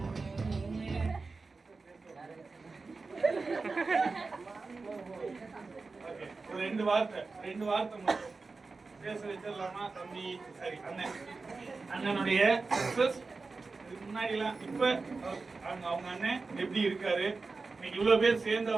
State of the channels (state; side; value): quieter; left; 4.0 dB